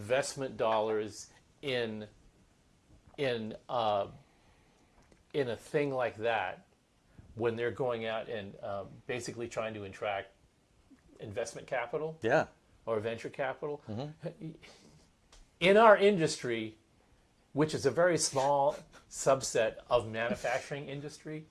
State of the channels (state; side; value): identical; both; correlation 1.00